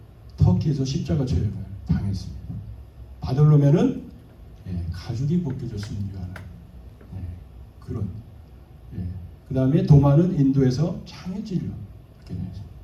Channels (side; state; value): both; identical; correlation 1.00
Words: 터키에서 십자가 처형을 당했습니다. 바돌로메는 가죽이 벗겨져 순교하는 그런. 그 다음에 도마는 인도에서 창해질로 이렇게